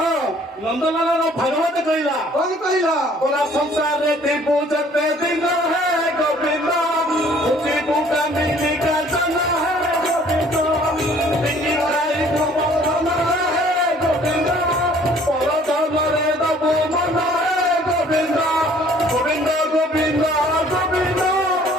ନନ୍ଦଲାଲାର ଭାଗବତ କହିଲା କଣ କହିଲା पूरा संसार रे पूजते दिन है गोविंद खुशी पूका मिली का जना है गोविंद मिली भाई को मन है गोविंद पर धर्मरे दबो मन है गोविंद गोविंद गोविंद गोविंद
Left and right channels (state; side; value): normal; both; correlation 0.57